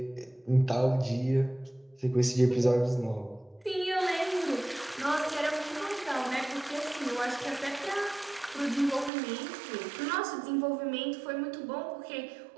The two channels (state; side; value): drops out; left; at 9.1 s